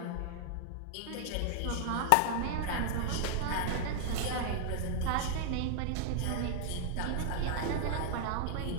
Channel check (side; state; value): both; different; correlation 0.00